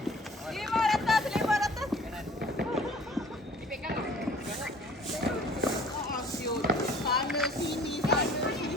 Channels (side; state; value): both; normal; correlation 0.51